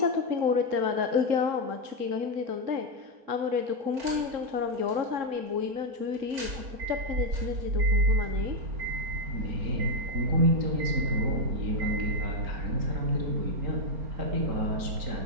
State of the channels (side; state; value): left; late; 4.3 ms